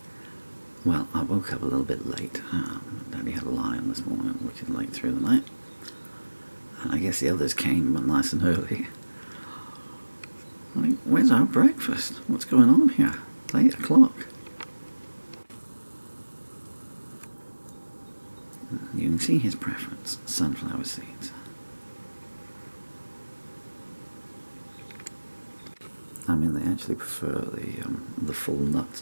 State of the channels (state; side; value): inverted; both; correlation -1.00